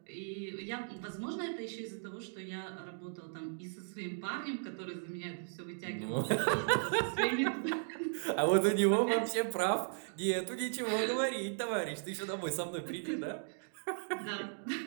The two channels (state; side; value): silent; left; digital silence